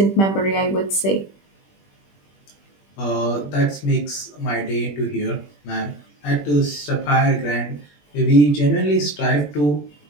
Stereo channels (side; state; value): right; late; 21 ms